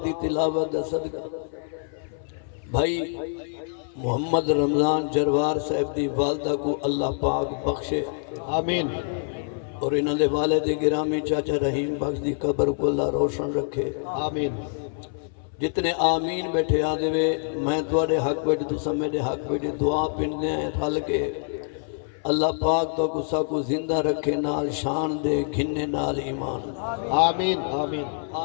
دی تلاوت دا صدقہ بھائی محمد رمضان جروار صاحب دی والدہ کو اللہ پاک بخشے آمین اور انہوں دے والد گرامی چاچا رحیم بخش دی قبر کو اللہ روشن رکھے آمین جتنے آمین بیٹھے آدھے وے میں توڑے حق بیٹھے تو سمیدے حق بیٹھے دعا پندے ہیں رل کے اللہ پاک تو کسا کو زندہ رکھے نال شان دے گھننے نال ایمان آمین آمین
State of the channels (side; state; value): right; silent; 57 dB below the other